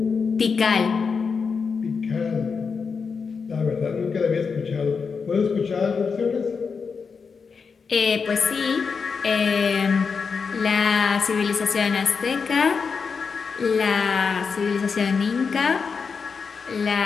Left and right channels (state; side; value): quieter; right; 5.5 dB